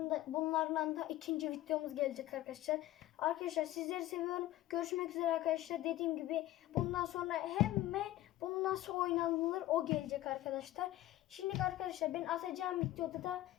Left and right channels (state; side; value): quieter; right; 15.2 dB